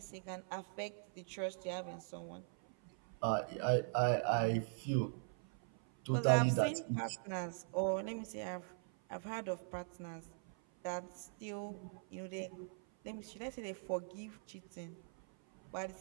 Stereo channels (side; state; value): left; silent; 50 dB below the other